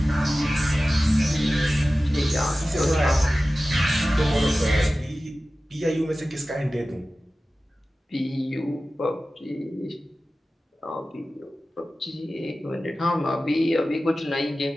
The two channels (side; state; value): both; normal; correlation 0.95